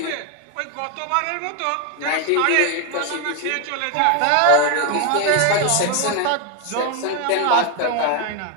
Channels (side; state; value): both; different; correlation 0.01